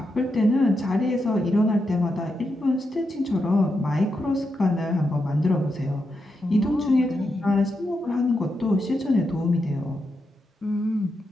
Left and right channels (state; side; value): normal; both; correlation 0.85